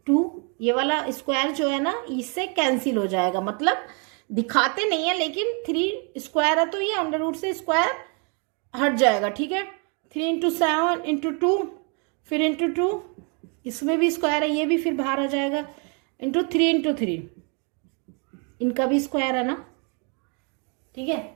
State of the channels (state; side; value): quieter; left; 36.3 dB